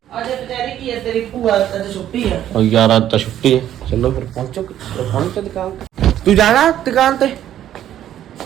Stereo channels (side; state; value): left; quieter; 11.5 dB